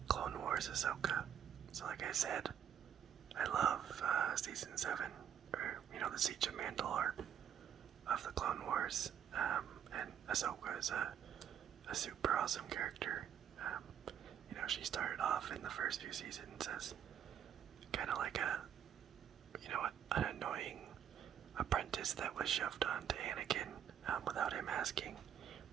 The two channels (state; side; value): quieter; left; 9.1 dB